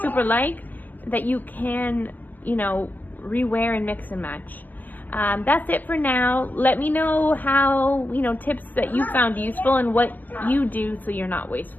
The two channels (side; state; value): right; late; 0.084 ms